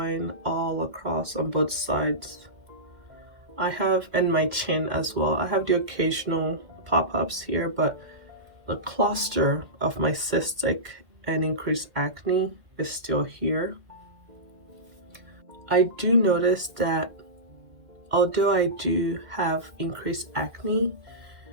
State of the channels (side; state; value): left; late; 2.1 ms